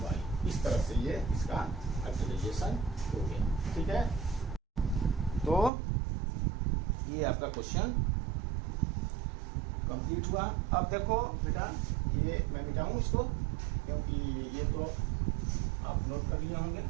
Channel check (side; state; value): left; drops out; at 5.7 s